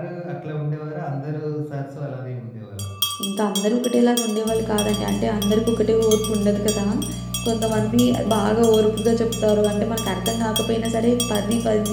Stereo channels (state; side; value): identical; both; correlation 1.00